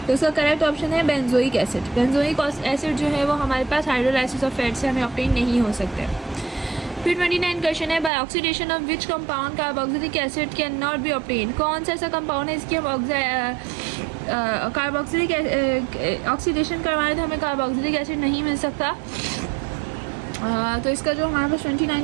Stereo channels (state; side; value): drops out; left; at 8.1 s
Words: तो उसका करेक्ट ऑप्शन है बेंजोइक एसिड। बेंजोइक एसिड जो है वो हमारे पास हाइड्रोलाइसिस ऑफ फैट से हमें ऑब्टेन नहीं हो सकते। फिर 29 क्वेश्चन है, by oxidation of which compound carboxylic acid can not be obtain. कौन सा ऐसा कंपाउंड है इसकी हम कार्बोक्सिलिक ऑक्सीडेशन करवाएं तो हमें कार्बोक्सिलिक एसिड नहीं मिल सकता। तो इसका जो हमारे पास